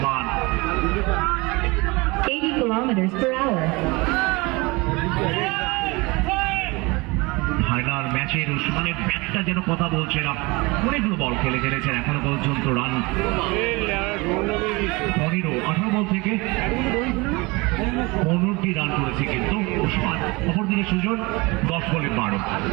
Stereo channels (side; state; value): left; quieter; 25.1 dB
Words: 80 kilometers per hour. Final ম্যাচের উসমানের ব্যাটটা যেন কথা বলছে না, অনেকগুলো বল খেলেছেন এখনো পর্যন্ত রান 18 বল থেকে 15টি রান করেছে কিন্তু ওসমান। অপরদিকে সুজন 10 বলে 12,